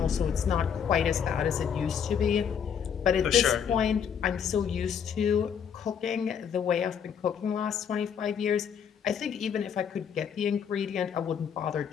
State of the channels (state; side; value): quieter; right; 7.7 dB